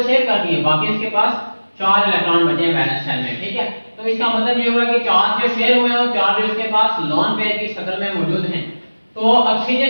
शेयर कर दिए, बाकी इसके पास 4 इलेक्ट्रॉन बचे हैं वैलेंस शेल में। ठीक है, तो इसका मतलब ये हुआ कि 4 जो शेयर हुए हैं और 4 जो इसके पास लोन पेयर की शक्ल में मौजूद हैं, तो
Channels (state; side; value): inverted; both; correlation -1.00